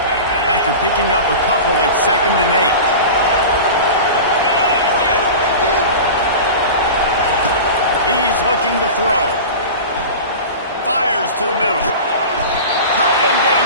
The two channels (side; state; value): both; inverted; correlation -0.31